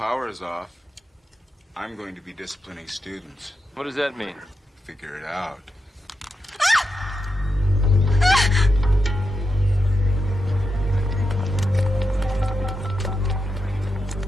is off, I'm going to be disciplining students. What does that mean? Figure it out.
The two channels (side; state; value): both; normal; correlation 0.87